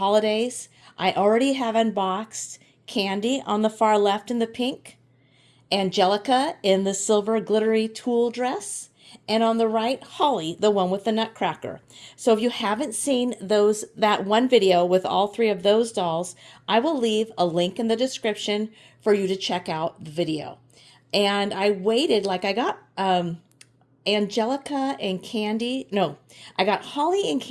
I already have unboxed Candy on the far left in the pink, Angelica in the silver glittery tulle dress, and on the right, Holly, the one with the nutcracker. So if you haven't seen that one video with all three of those dolls, I will leave a link in the description for you to check out the video. And I waited, like I got Angelica and Candy. No, I got Holly and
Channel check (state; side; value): identical; both; correlation 1.00